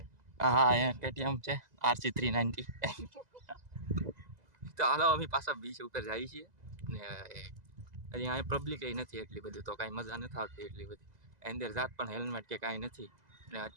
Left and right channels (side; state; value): left; late; 2.0 ms